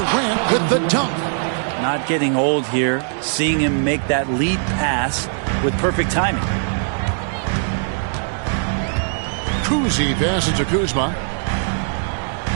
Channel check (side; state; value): left; silent; 66 dB below the other